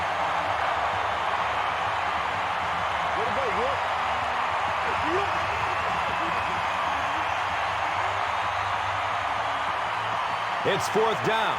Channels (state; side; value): identical; both; correlation 1.00